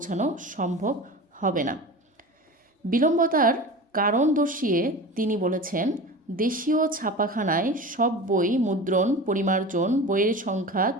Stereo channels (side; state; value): both; normal; correlation 0.33